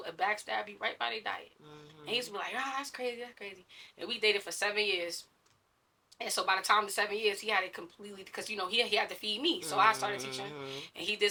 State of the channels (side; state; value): both; identical; correlation 1.00